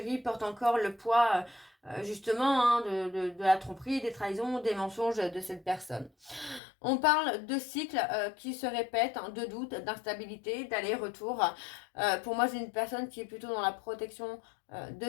porte encore le poids justement hein, de la tromperie, des trahisons, des mensonges de cette personne. On parle de cycles qui se répètent, hein, de doutes, d'instabilité, d'aller-retour. Pour moi, c'est une personne qui est plutôt dans la protection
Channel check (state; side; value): drops out; right; at 6.6 s